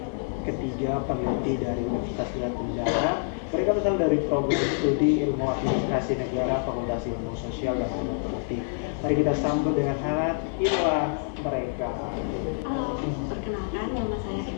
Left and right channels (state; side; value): silent; right; digital silence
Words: ketiga peneliti dari Universitas Tenggara. Mereka berasal dari program studi ilmu administrasi negara, Fakultas Ilmu Sosial dan Ilmu Politik. Mari kita sambut dengan hangat inilah mereka. Halo, perkenalkan nama saya